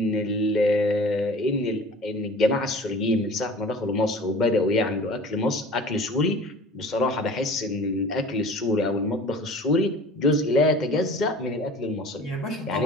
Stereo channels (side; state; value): both; normal; correlation 0.43